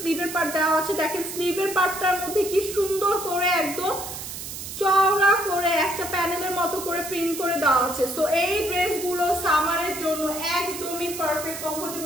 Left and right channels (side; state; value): right; noise; hiss, 8 dB below the sound